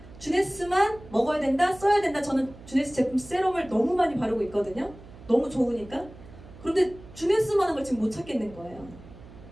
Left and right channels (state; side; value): noise; right; hum, 19 dB below the sound